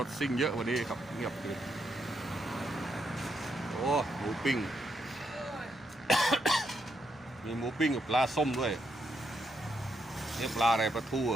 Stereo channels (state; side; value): normal; both; correlation 0.79